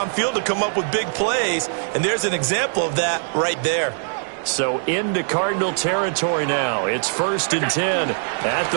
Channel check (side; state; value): left; silent; 64 dB below the other